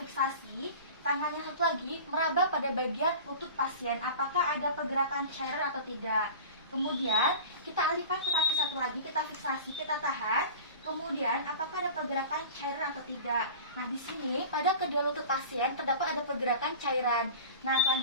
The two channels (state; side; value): inverted; both; correlation -0.36